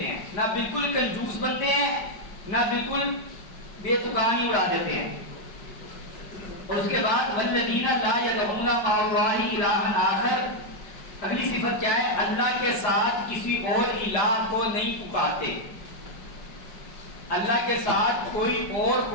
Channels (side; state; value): right; late; 4.9 ms